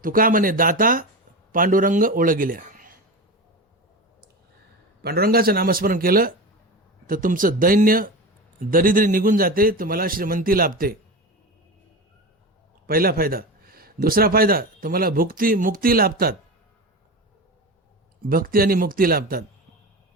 तुका म्हणे दाता पांडुरंग ओळ गेल्या. पांडुरंगाचं नामस्मरण केलं तर तुमचं दैन्य दरिद्री निघून जाते, तुम्हाला श्रीमंती लाभते. पहिला फायदा. दुसरा फायदा, तुम्हाला मुक्ती लाभतात. भक्ती आणि मुक्ती लाभतात.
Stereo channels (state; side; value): normal; both; correlation 0.25